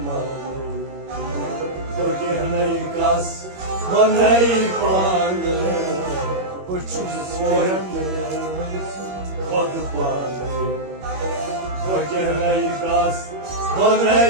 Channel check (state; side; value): late; left; 21 ms